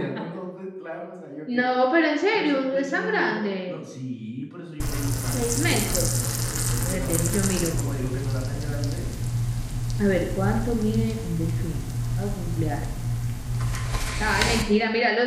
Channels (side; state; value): both; identical; correlation 1.00